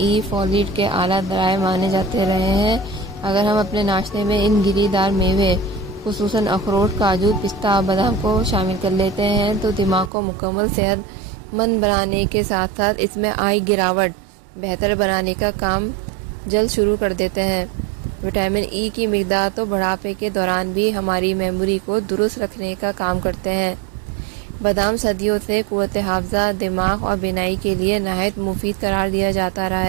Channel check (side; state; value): left; drops out; at 10.1 s